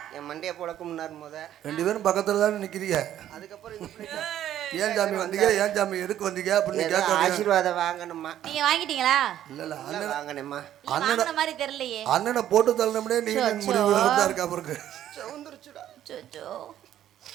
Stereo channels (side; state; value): left; quieter; 11.5 dB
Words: என் மண்டையை போலக்கும்னார் முத. 2 பேரும் பக்கத்துல தானே நிக்கிறீங்க. அதுக்கப்புறம் ஏன் சாமி வந்தீங்க, ஏன் சாமி எதுக்கு வந்தீங்க அப்படின்னு கேட்க. ஆசீர்வாதம் வாங்கணுமா? நீங்க வாங்கிட்டீங்களா? இல்ல அண்ணன் வாங்கணுமா? வாங்குன மாதிரி தெரியலையே. அண்ணனை போட்டு தள்ளணும்னே நீங்க முடிவு தான் இருக்கா பிறகு. சவுந்தரிச்சுடா. சோச்சோ